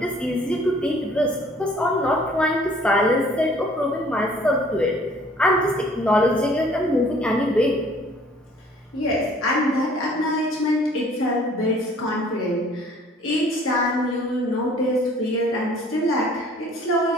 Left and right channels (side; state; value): both; normal; correlation 0.55